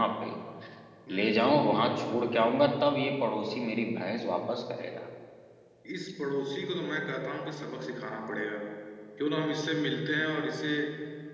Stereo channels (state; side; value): identical; both; correlation 1.00